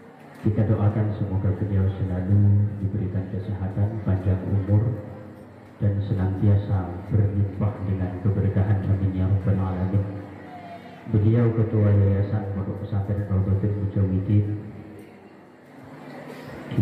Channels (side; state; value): both; identical; correlation 1.00